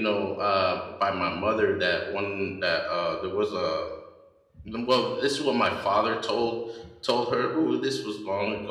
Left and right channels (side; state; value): both; identical; correlation 1.00